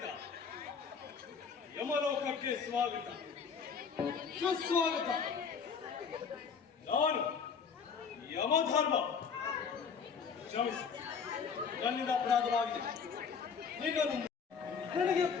ಯಮಲೋಕಕ್ಕೆ ಸ್ವಾಗತ ಸುಸ್ವಾಗತ. ನಾನು ಯಮಧರ್ಮ, ಕ್ಷಮಿಸಿ, ನನ್ನಿಂದ ಅಪರಾಧವಾಗಿದೆ. ನಿನ್ನನ್ನು ನನಗೆ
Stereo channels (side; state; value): right; quieter; 6.1 dB